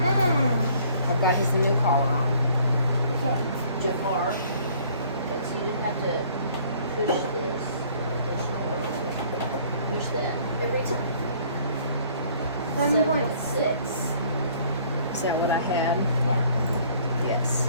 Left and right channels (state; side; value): inverted; both; correlation -0.57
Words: I've got his new collar on. Okay. Jafar. Okay, so you have to push this. Push that every time. 7.6. Is that what I had? Yeah. Yes.